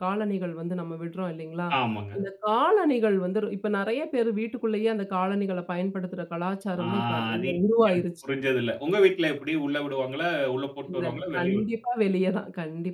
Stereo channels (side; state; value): both; identical; correlation 1.00